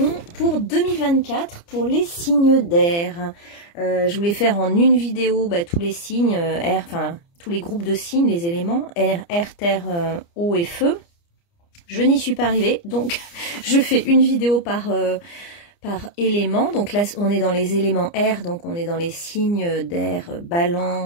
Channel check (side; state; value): right; late; 29 ms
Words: pour 2024 pour les signes d'air. Je voulais faire en une vidéo tous les signes, air, enfin tous les groupes de signes, les éléments, air, terre, eau et feu. Je n'y suis pas arrivée, donc je fais une vidéo par élément. Donc là on est dans les éléments air, donc on est dans les signes d'air,